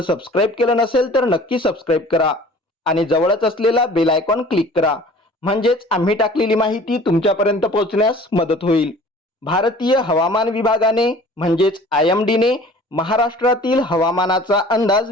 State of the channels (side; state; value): both; normal; correlation 0.47